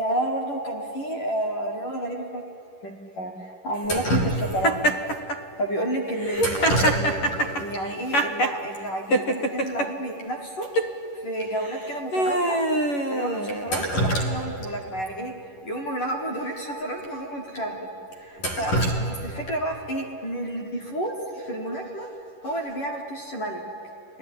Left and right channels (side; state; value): right; late; 11 ms